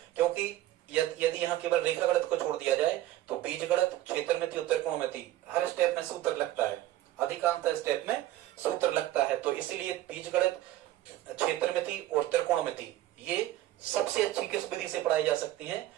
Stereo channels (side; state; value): left; quieter; 14.5 dB